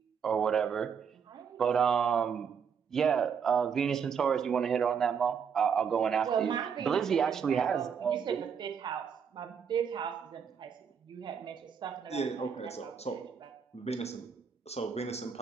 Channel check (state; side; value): quieter; left; 6.9 dB